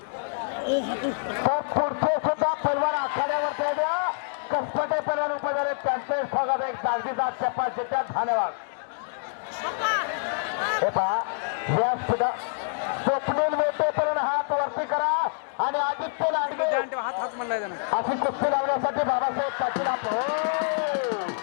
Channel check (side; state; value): right; silent; digital silence